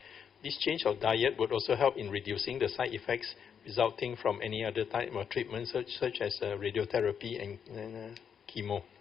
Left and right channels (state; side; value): quieter; right; 7.5 dB